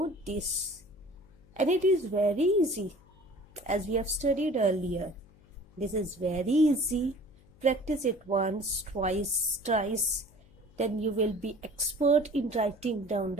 this, and it is very easy, as we have studied earlier. This is very easy. Practice it once, twice, thrice. Then you will be expert in writing down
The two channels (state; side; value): noise; left; hum, 27 dB below the sound